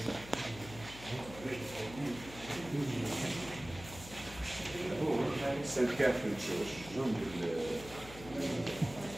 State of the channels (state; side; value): noise; left; hum, 15 dB below the sound